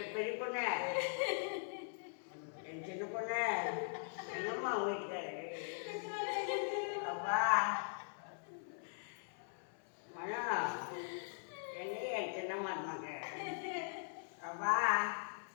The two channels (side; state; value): right; silent; digital silence